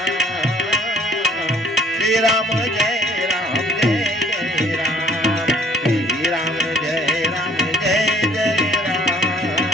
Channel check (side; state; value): both; normal; correlation 0.56